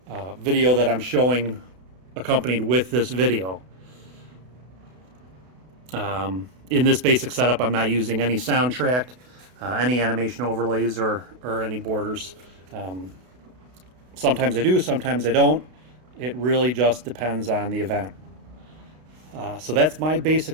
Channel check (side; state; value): left; late; 32 ms